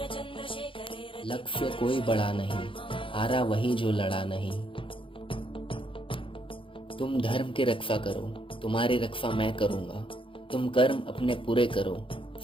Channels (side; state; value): right; late; 0.25 ms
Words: लक्ष्य कोई बड़ा नहीं, हारा वही जो लड़ा नहीं। तुम धर्म की रक्षा करो, तुम्हारी रक्षा मैं करूँगा। तुम कर्म अपने पूरे करो,